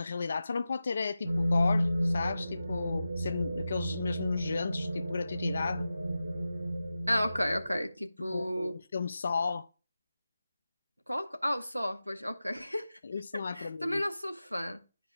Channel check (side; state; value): both; inverted; correlation -0.93